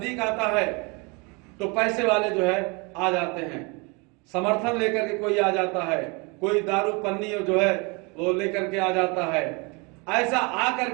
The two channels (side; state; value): left; quieter; 29.7 dB